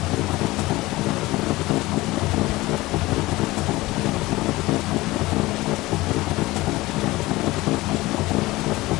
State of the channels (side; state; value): right; quieter; 19.5 dB